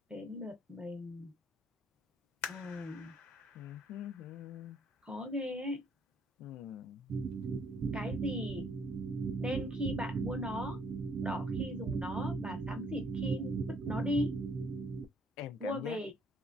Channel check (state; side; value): normal; both; correlation 0.65